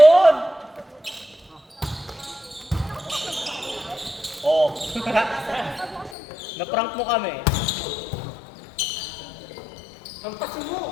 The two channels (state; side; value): drops out; right; at 6.2 s